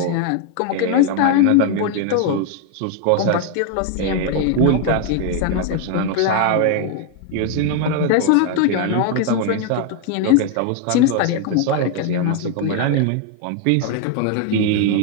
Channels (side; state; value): both; different; correlation 0.00